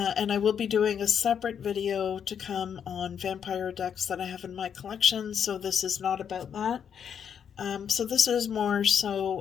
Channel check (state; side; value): quieter; right; 8.0 dB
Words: I will be doing a separate video to come on vampire decks that I have in my collection, so this is not about that. So this is more